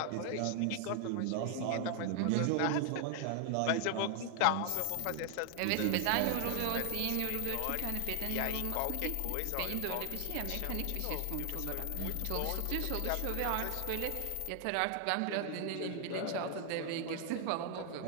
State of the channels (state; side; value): different; both; correlation 0.00